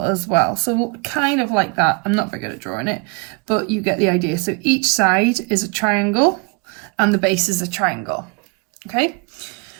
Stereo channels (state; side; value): quieter; left; 32.1 dB